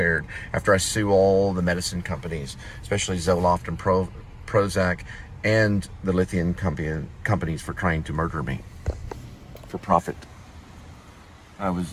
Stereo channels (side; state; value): both; identical; correlation 1.00